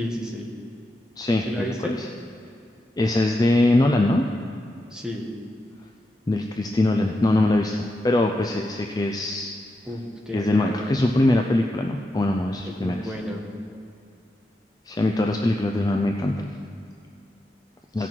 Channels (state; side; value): normal; both; correlation 0.86